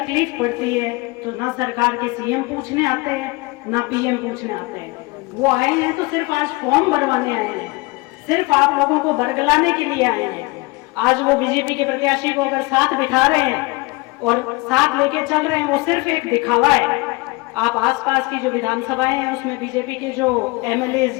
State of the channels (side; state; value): right; quieter; 24.8 dB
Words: पड़ती है तो ना सरकार के सीएम पूछने आते हैं ना पीएम पूछने आते हैं। वो आए हैं तो सिर्फ आज फॉर्म भरवाने आए हैं, सिर्फ आप लोगों को बरगलाने के लिए आए हैं। आज वो बीजेपी के प्रत्याशी को अगर साथ दिखा रहे हैं और साथ लेके चल रहे हैं, वो सिर्फ एक दिखावा है। आप आसपास की जो विधानसभाएं हैं उसमें बीजेपी के जो एमएलए